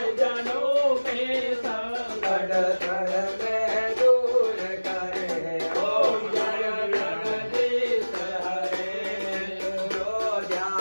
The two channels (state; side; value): inverted; both; correlation -1.00